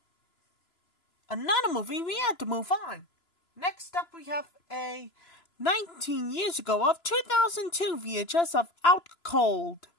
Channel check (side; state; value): right; late; 2.9 ms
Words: Another movie, we had to move on. Next up, we have a 19 years ago of 2002 VHS of Out Cold,